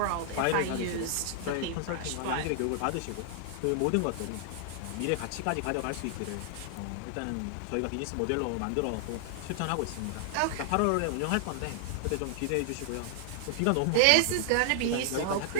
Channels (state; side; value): different; both; correlation 0.00